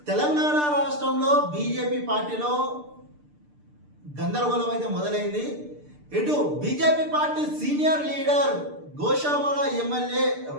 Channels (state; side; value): late; left; 6.7 ms